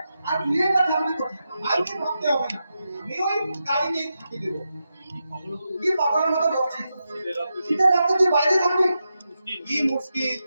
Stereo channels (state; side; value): inverted; both; correlation -0.88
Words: আর তুই এবার থাকবি কোথায়? আর কি ভাবতে হবে না, আমি ওই গাড়িতেই থাকি দেবো। কি পাগলের মতো বকছিস? শীতের রাতে তুই বাইরে থাকবি? কি মুশকিল,